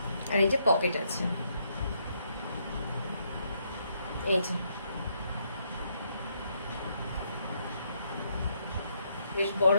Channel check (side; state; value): both; inverted; correlation -0.75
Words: আর এই যে পকেট আছে, এই যে বেশ বড়